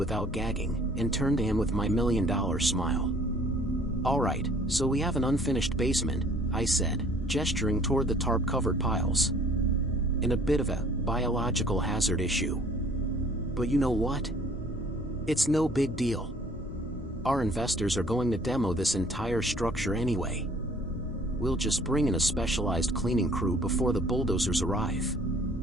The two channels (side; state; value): both; normal; correlation 0.55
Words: gagging, and turned to him with my $1,000,000 smile. "All right, so we have an unfinished basement," I said, gesturing toward the tarp-covered piles. "And a bit of a biological hazard issue. But you know what? It's no big deal. Our investors are going to demo this entire structure anyway. We'll just bring in a specialized cleaning crew before the bulldozers arrive.